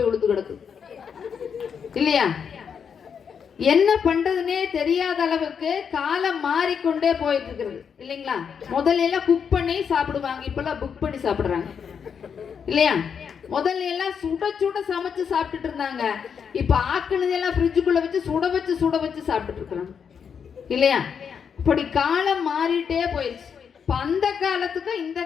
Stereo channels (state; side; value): quieter; right; 6.9 dB